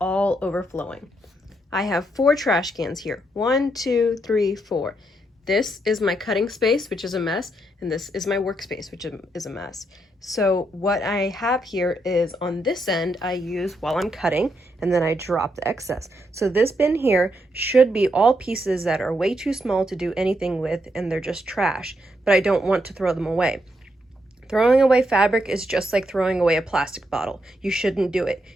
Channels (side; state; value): both; normal; correlation 0.79